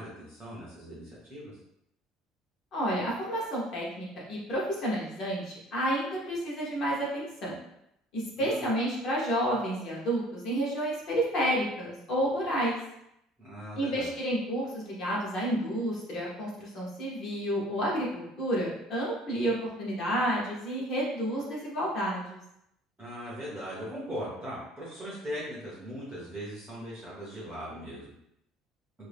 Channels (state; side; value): normal; both; correlation 0.51